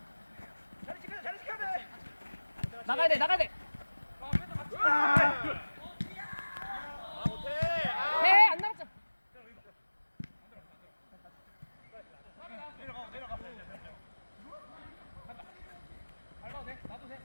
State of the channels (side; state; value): both; inverted; correlation -1.00